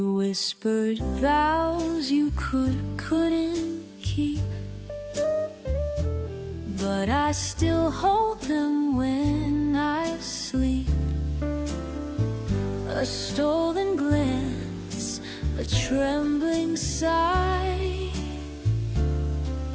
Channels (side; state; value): both; identical; correlation 1.00